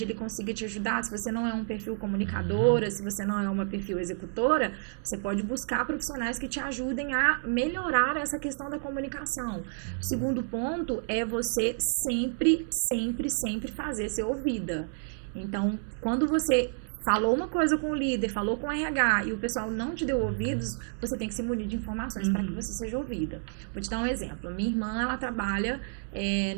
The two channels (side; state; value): left; silent; 58 dB below the other